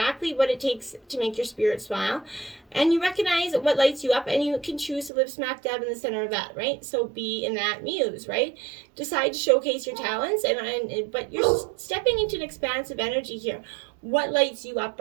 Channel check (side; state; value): left; drops out; at 5.1 s